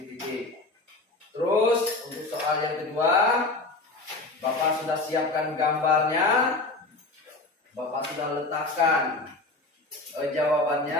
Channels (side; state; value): right; quieter; 3.2 dB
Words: Terus untuk soal yang kedua, Bapak sudah siapkan gambarnya, Bapak sudah letakkan